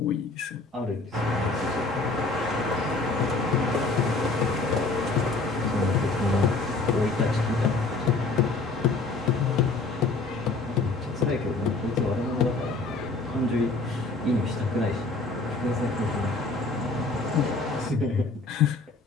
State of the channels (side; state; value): right; quieter; 3.6 dB